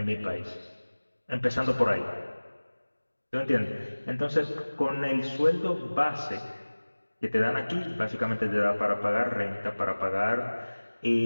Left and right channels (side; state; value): both; inverted; correlation -1.00